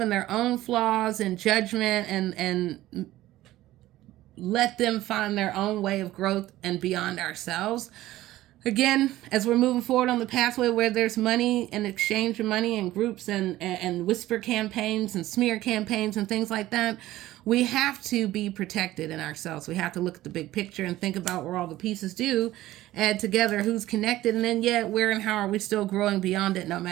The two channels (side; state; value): left; quieter; 15.6 dB